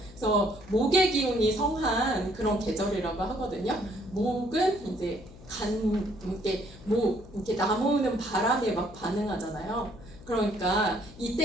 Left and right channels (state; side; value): noise; left; hum, 19 dB below the sound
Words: 그래서 목의 기운이 성한 그런 계절이라고 하거든요. 목은 이제 이렇게 나무는 바람에 막 반응하잖아요. 그러니까